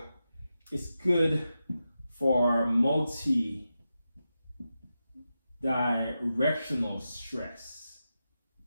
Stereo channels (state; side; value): inverted; both; correlation -0.90